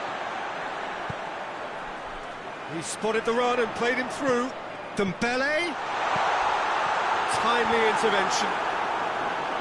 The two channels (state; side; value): identical; both; correlation 1.00